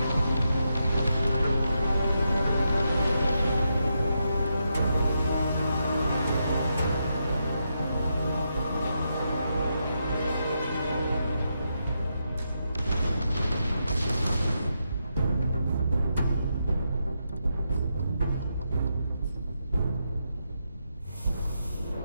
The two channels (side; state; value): both; inverted; correlation -0.83